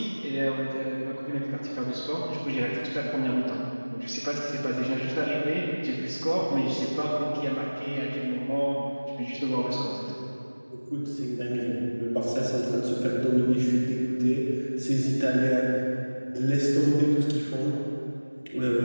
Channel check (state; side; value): inverted; both; correlation -1.00